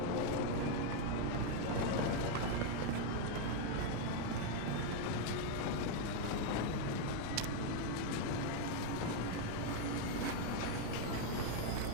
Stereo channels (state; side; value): different; both; correlation 0.01